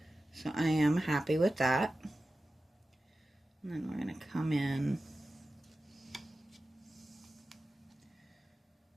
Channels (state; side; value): normal; both; correlation 0.95